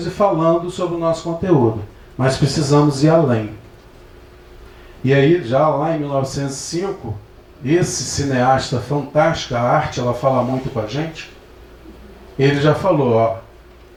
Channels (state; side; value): identical; both; correlation 1.00